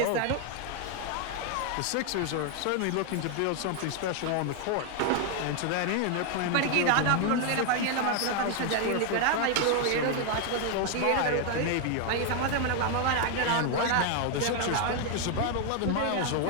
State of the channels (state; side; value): different; both; correlation 0.00